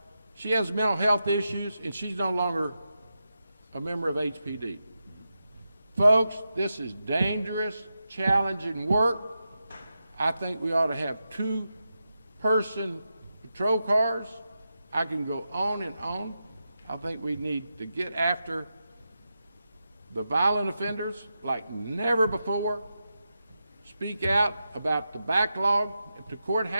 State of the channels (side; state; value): both; inverted; correlation -0.89